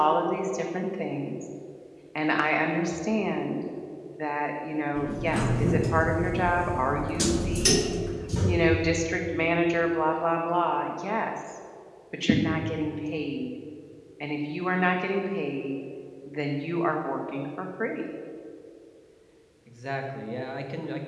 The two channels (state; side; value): identical; both; correlation 1.00